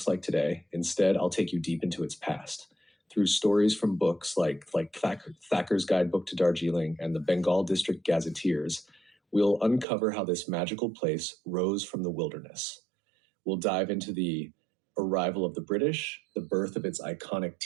like today. Instead, I'll take you deep into its past. Through stories from books like Thacker's Guidebook to Darjeeling and the Bengal District Gazetteers, we'll uncover how this magical place rose from the wilderness. We'll dive into the arrival of the British, the birth of its iconic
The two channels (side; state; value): left; drops out; at 9.9 s